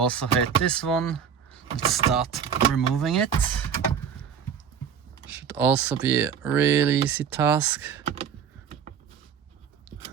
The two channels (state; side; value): quieter; left; 7.6 dB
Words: hate this one. Let's start removing it. Should also be a really easy task.